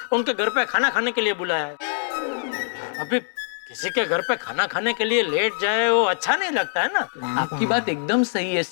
उनके घर पे खाना खाने के लिए बुलाया है। अभी किसी के घर पे खाना खाने के लिए लेट जाए वो अच्छा नहीं लगता है ना। आपकी बात एकदम सही है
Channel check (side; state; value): right; silent; digital silence